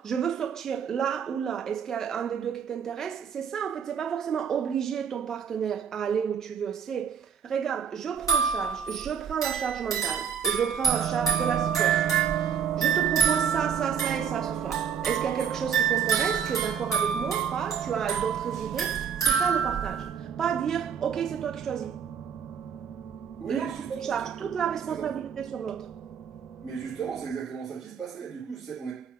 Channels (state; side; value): quieter; left; 7.5 dB